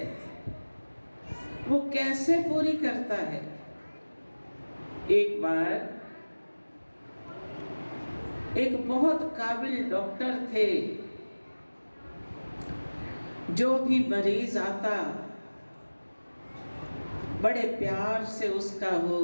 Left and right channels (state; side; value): inverted; both; correlation -1.00